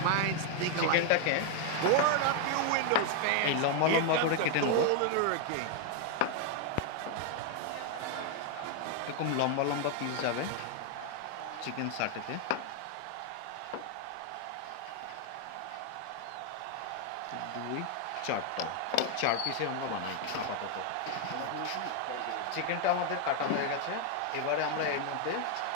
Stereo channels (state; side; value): different; both; correlation 0.00